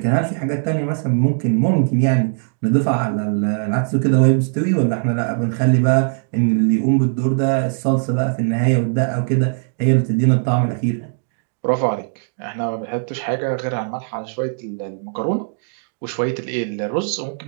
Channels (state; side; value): silent; left; digital silence